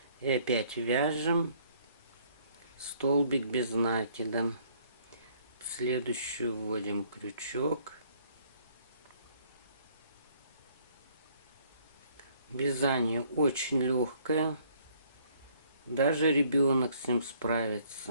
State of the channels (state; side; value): inverted; both; correlation -0.62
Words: И опять вяжем столбик без накида. Следующую вводим крючок. Вязание очень легкое, даже ребенок с ним